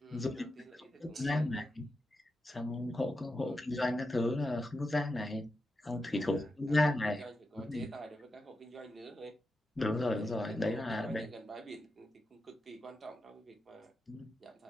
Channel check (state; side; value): normal; both; correlation 0.88